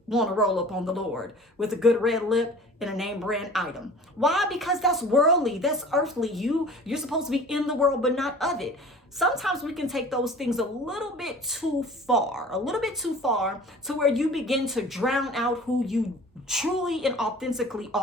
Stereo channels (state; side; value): normal; both; correlation 0.43